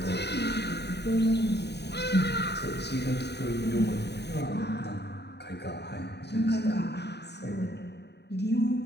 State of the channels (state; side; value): late; right; 0.49 ms